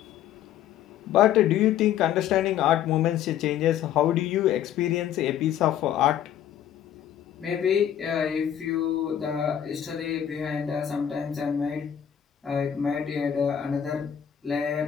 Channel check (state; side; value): quieter; right; 10.1 dB